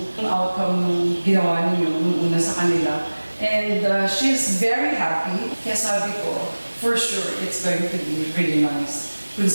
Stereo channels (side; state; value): both; inverted; correlation -1.00